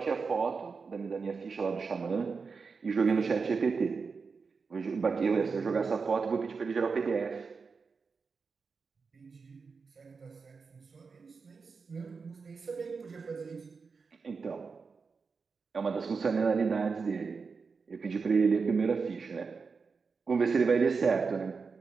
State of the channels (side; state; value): left; quieter; 5.0 dB